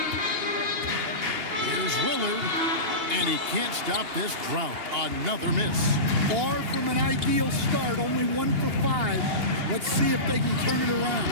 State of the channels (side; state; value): left; late; 2.8 ms